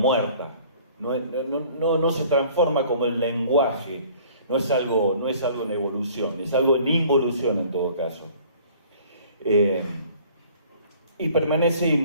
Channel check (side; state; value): both; inverted; correlation -0.52